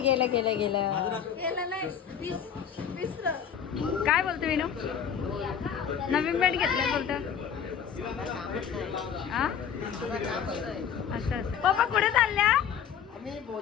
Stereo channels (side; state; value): right; quieter; 8.1 dB